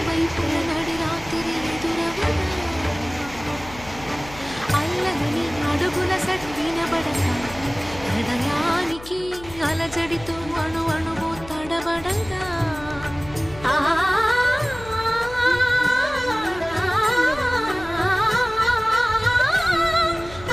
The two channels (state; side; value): noise; left; hum, 17 dB below the sound